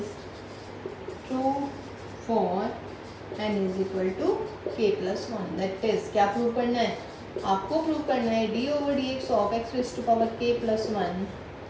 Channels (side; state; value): both; identical; correlation 1.00